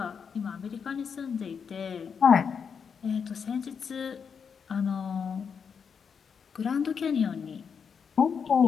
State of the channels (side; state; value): right; quieter; 6.5 dB